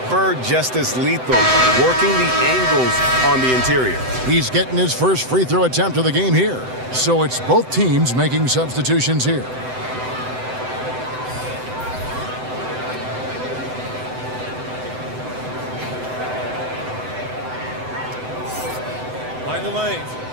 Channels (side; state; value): left; late; 7.9 ms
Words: Bird just as lethal, working the angles on the interior. He's getting his first free throw attempt of the game here. So it's both teams making substitutions here. Mind the lanes.